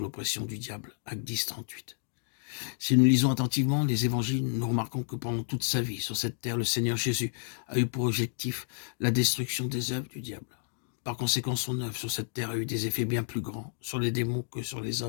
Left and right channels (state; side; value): silent; right; digital silence